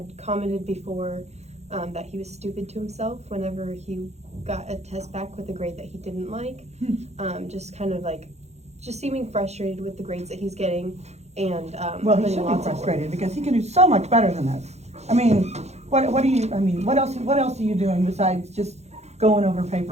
commented before that he was stupid to himself whenever he got a test back with a grade that he didn't like. Just kind of like, just seeming frustrated with the grades that he's getting, and Well, he should be frustrated because he can do so much better than this. I mean, what else are you doing besides just going over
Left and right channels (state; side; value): late; left; 0.32 ms